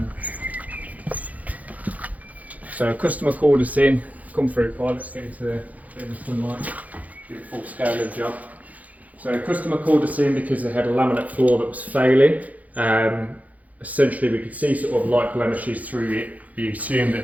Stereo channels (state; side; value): late; left; 0.075 ms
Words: So a customer called us in, come through, right, let's get into the sunlight, do a full scale of the job. So a customer called us in because they had a laminate floor that was failing. Essentially we could see sort of light blemishes through it. We assumed